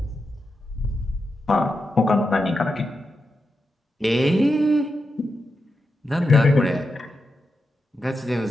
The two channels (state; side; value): normal; both; correlation 0.88